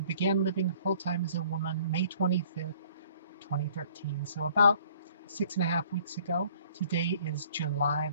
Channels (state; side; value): inverted; both; correlation -0.56